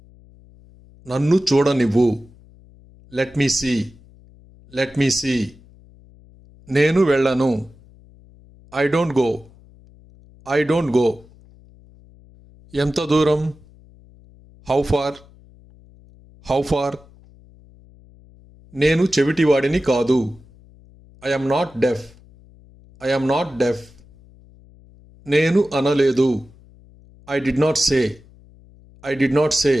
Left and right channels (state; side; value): noise; left; hum, 26 dB below the sound